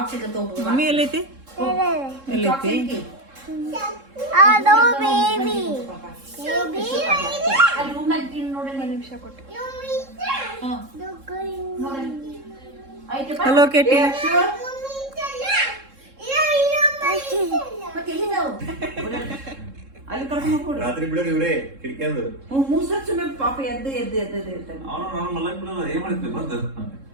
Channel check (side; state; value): left; late; 3.7 ms